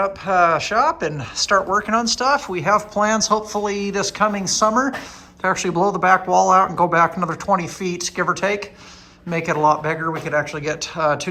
shop and start working on stuff. We have plans, hopefully this coming summer, to actually blow the back wall out and go back another 20 feet, give or take. Make it a lot bigger. We could actually get 2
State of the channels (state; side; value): identical; both; correlation 1.00